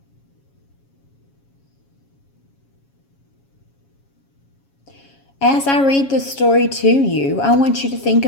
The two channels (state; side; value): late; right; 7.3 ms